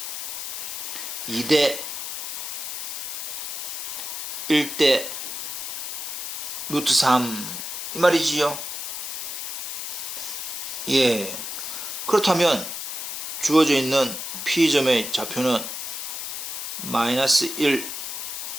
2대 1대 루트 3 이 말이지요. 예. 그렇다면 주어져 있는 P점의 좌표는 마이너스 1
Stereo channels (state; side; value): noise; left; hiss, 5 dB below the sound